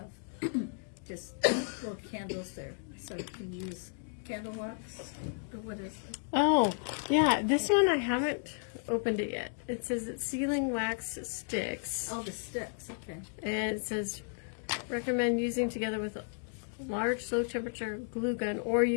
just little candles there, so you can use candle wax, or what is it? Oh, yeah, this one I haven't opened it yet. It says it's sealing wax sticks. Oh, the sticks, okay. And it says recommend using together with a large low temperature glue gun, or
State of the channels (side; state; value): right; silent; 55 dB below the other